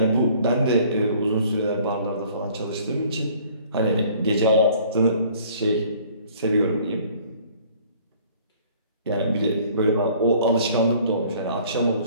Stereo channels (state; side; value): inverted; both; correlation -0.55